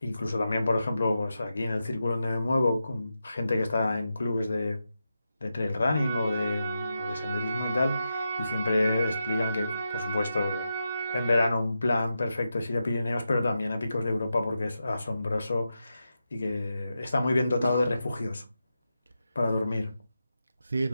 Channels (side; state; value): both; inverted; correlation -0.88